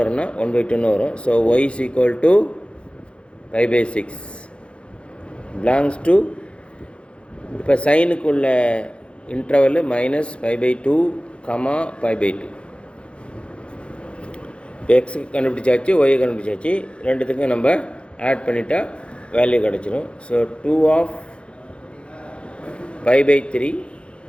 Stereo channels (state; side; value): late; right; 0.058 ms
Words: வரும்னா 1/2ன்னு வரும். So y is equal to π/6 belongs to, இப்போ சைனுக்குள்ள இன்டர்வல் -π/2, π/2. இப்போ எக்ஸுக்கு கண்டுபிடிச்சாச்சு, ஒய்யை கண்டுபிடிச்சாச்சு. ரெண்டுத்துக்கும் நம்ம ஆட் பண்ணிட்டா வேல்யூ கிடச்சிரும். So 2 of π/3